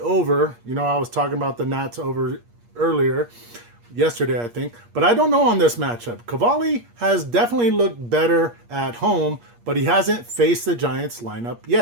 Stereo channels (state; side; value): late; left; 8.5 ms